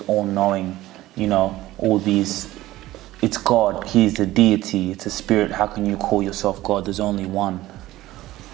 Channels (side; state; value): left; quieter; 16.3 dB